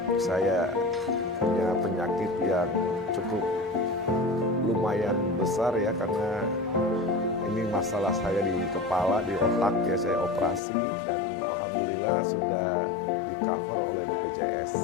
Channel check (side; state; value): right; drops out; at 10.6 s